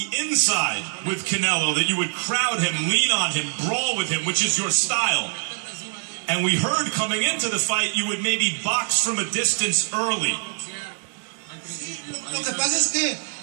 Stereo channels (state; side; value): silent; left; 61 dB below the other